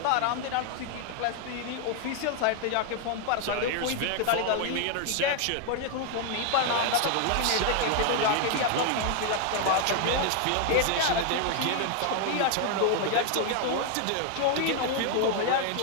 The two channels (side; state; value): both; different; correlation 0.00